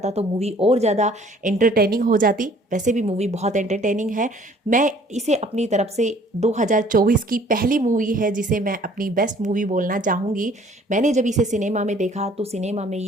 तो मूवी और ज़्यादा एंटरटेनिंग हो जाती। वैसे भी मूवी बहुत एंटरटेनिंग है। मैं इसे अपनी तरफ से 2024 2024 की पहली मूवी है जिसे मैं अपनी बेस्ट मूवी बोलना चाहूँगी। मैंने जब इसे सिनेमा में देखा तो सिनेमा में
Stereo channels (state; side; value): normal; both; correlation 0.56